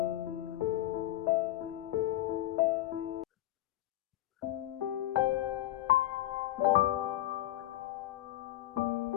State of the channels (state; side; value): quieter; right; 14.6 dB